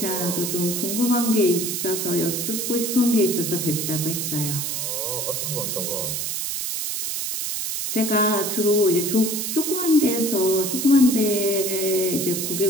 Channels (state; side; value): noise; right; hiss, 2 dB below the sound